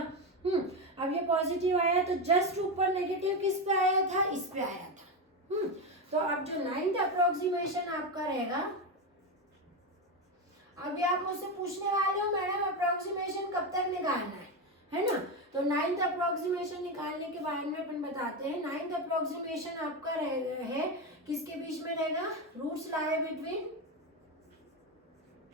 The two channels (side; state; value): both; normal; correlation 0.13